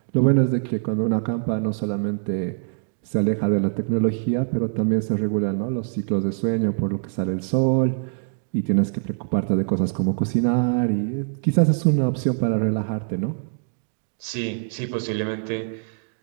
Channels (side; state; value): left; silent; digital silence